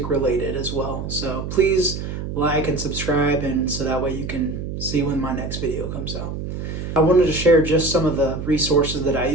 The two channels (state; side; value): noise; right; hum, 6 dB below the sound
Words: related as well. So please like and subscribe, and so that way you can see when my next video comes out. I wanted to share just some of the resources that I